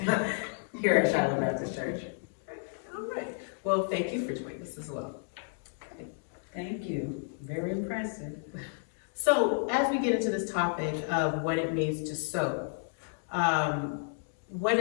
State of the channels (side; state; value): right; silent; digital silence